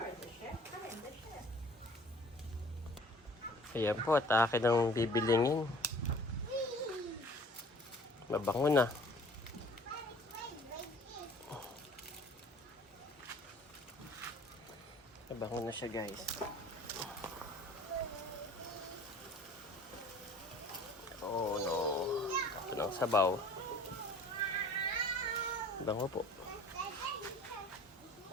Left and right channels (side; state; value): both; normal; correlation 0.49